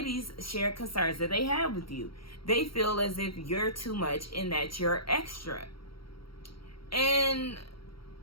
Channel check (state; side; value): late; right; 0.74 ms